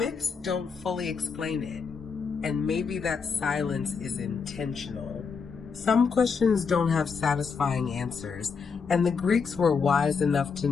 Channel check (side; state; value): right; quieter; 5.6 dB